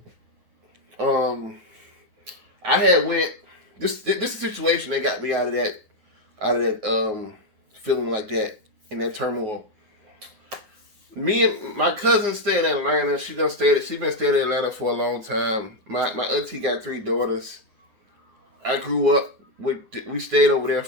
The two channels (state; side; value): late; left; 9.3 ms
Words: I had went. This is a situation that got me out of that feeling like that, in that turmoil. Me and my cousin stay in Atlanta. She been staying in Atlanta for a long time. My auntie got 3 daughters. I grew up we stayed over there